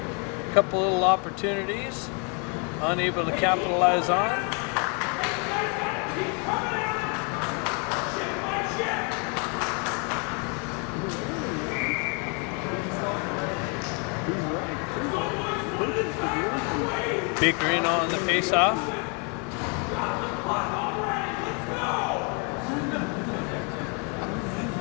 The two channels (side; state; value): right; quieter; 35.6 dB